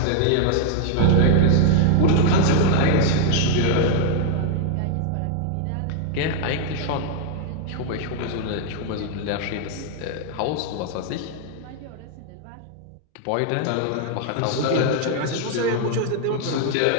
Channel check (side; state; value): both; different; correlation 0.00